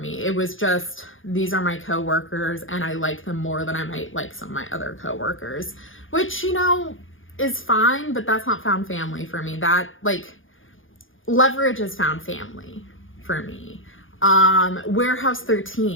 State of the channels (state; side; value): late; right; 0.58 ms